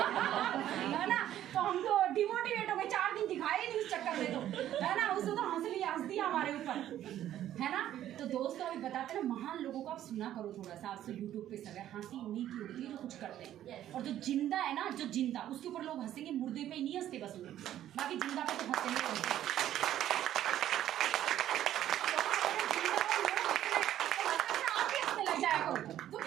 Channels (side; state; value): left; quieter; 12.0 dB